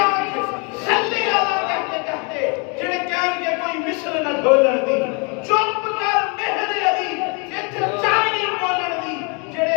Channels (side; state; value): right; quieter; 33.9 dB